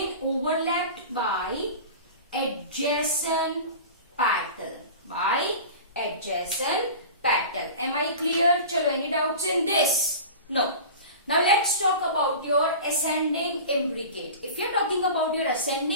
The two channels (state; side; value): inverted; both; correlation -0.35